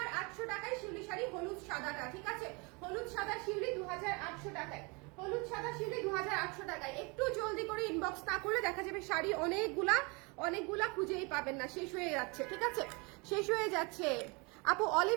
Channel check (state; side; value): quieter; left; 29.3 dB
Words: টাকায় শিউলি শাড়ি, হলুদ সাদাটা, ঠিক আছে। হলুদ সাদা শিউলি 2,800 টাকায়, হলুদ সাদা শিউলি 2,800 টাকায়। একটু জলদি করে ইনবক্স না করলে দেখা যাবে শাড়ি অনেকগুলা খুঁজেই পাবেন না, শেষ হয়ে যাচ্ছে, ঠিক আছে, শেষ হয়ে যাচ্ছে। আপু